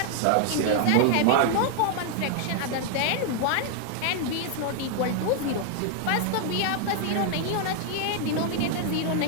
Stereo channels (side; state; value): both; different; correlation 0.00